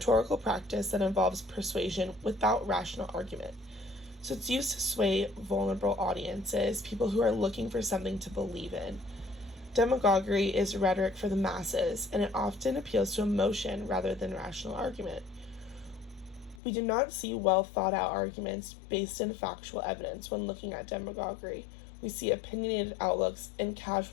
practice that involves persuasion without rational argument. So it's used to sway vulnerable audiences, people who are looking for something to believe in. Demagoguery is rhetoric for the masses, and it often appeals to emotion rather than rational argument. We do not see well thought out arguments based in factual evidence when looking at demagoguery. We see opinionated outlooks and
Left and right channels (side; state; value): right; drops out; at 16.6 s